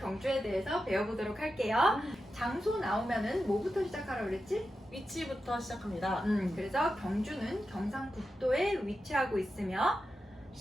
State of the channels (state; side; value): normal; both; correlation 0.90